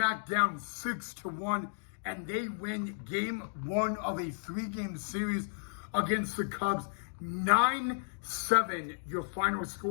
down 6-1, and they win game one of a 3-game series against the Cubs. 9-7, your final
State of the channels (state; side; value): silent; right; digital silence